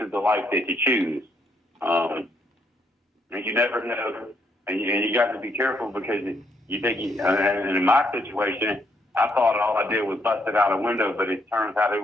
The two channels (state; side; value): normal; both; correlation 0.73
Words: is the life that you choose, and you never know, and you got to be careful because you think. And in my situation, I thought all I did was busted out a window, but it turns out it